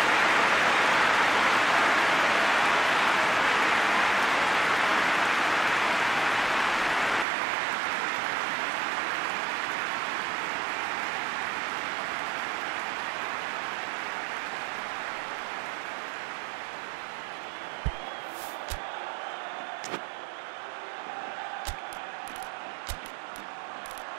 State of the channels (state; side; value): drops out; left; at 7.2 s